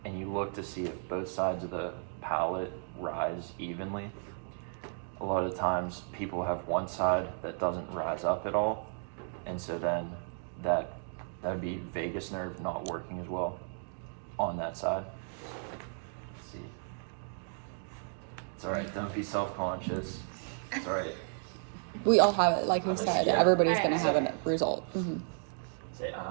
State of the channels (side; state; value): left; silent; 55 dB below the other